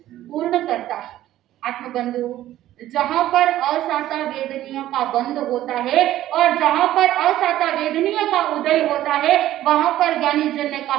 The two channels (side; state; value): left; quieter; 13.7 dB